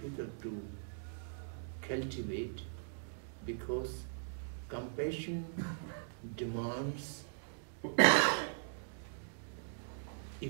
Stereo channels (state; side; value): silent; left; digital silence